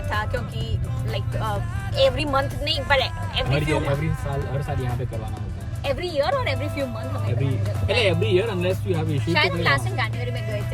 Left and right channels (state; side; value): identical; both; correlation 1.00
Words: था क्योंकि लाइक एवरी मंथ नहीं पर एवरी साल यहाँ पे करवाना होता है। एवरी ईयर और every few month every year unless you have issues. शायद हम लास्ट जनवरी में गए